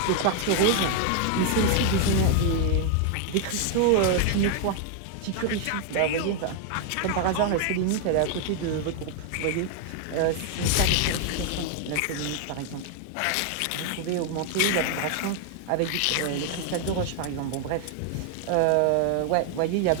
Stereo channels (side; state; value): both; different; correlation 0.00